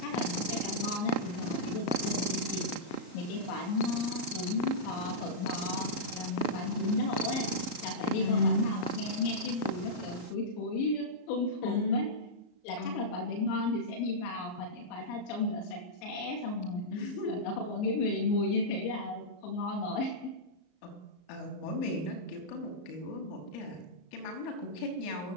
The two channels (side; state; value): right; late; 34 ms